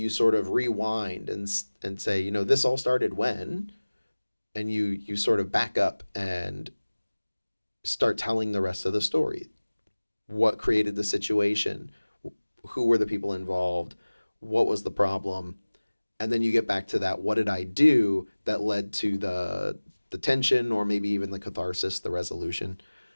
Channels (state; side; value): inverted; both; correlation -1.00